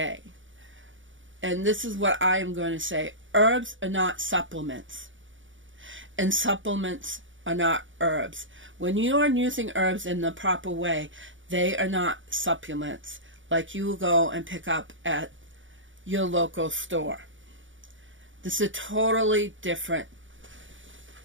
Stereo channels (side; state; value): left; late; 0.56 ms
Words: And this is what I am going to say. Herbs are not supplements. And supplements are not herbs. When you are using herbs in the proper way, they are not supplements like you will go and pick up at your local store. This is a totally different